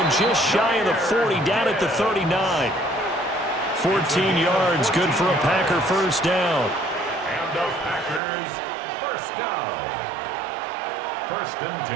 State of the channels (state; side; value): drops out; left; at 8.2 s